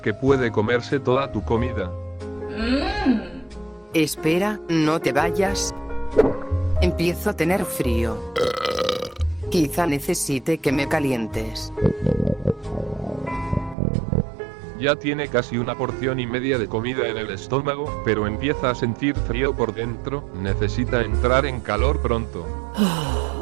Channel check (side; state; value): left; drops out; at 13.8 s